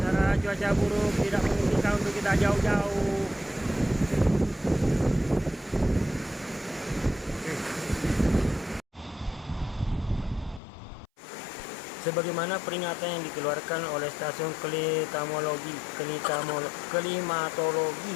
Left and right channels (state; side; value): drops out; right; at 10.6 s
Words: cuaca buruk tidak memungkinkan untuk kita jauh-jauh. Sebagaimana peringatan yang dikeluarkan oleh Stasiun